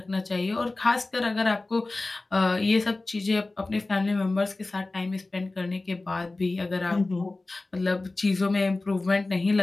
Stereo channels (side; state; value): right; quieter; 3.1 dB